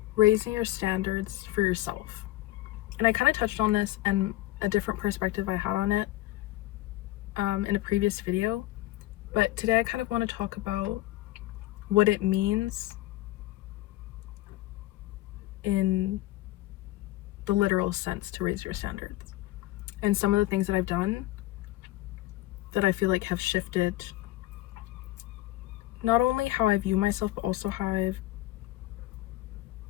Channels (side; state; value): right; quieter; 16.9 dB